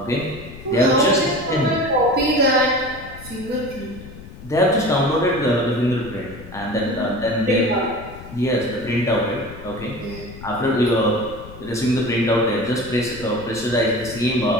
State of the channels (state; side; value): noise; left; rumble, 16 dB below the sound